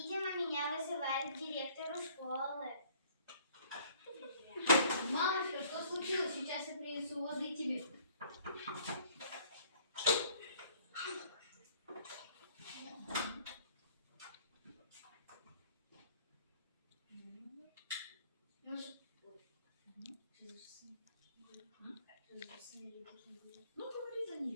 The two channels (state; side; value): inverted; both; correlation -0.57